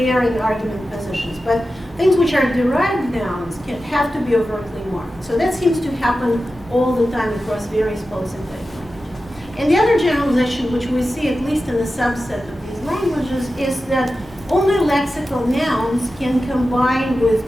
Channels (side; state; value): both; normal; correlation 0.93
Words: in argument positions, but things which are derived nouns can have to be overtly marked. So that seems to happen all the time across various polysynthetic languages. And the other generalization, which we see at least in a subset of these languages, is that only lexical nouns can combine